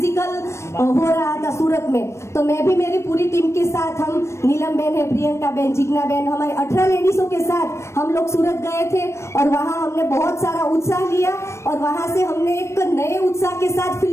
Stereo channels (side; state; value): right; late; 0.13 ms